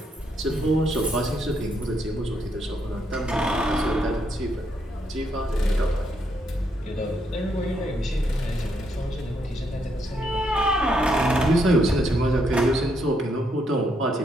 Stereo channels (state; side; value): normal; both; correlation 0.76